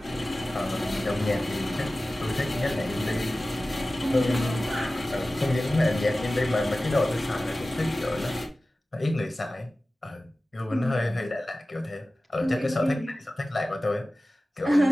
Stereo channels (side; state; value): both; normal; correlation 0.96